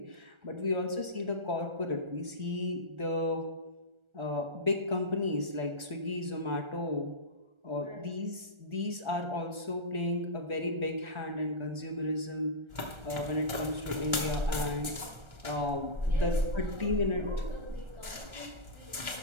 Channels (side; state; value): left; late; 1.3 ms